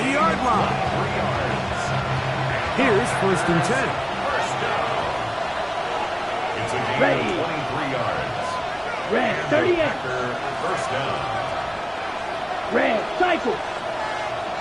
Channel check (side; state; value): both; identical; correlation 1.00